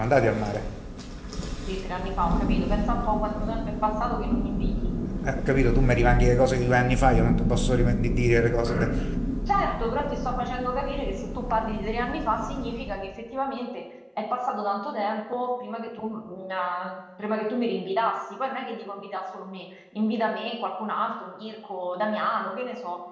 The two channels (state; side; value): identical; both; correlation 1.00